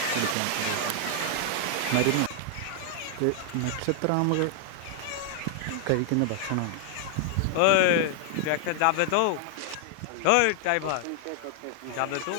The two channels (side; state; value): both; different; correlation 0.00